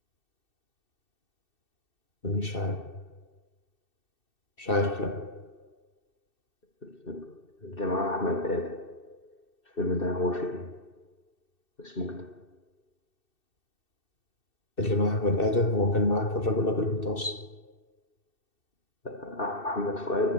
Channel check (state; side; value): late; right; 2.6 ms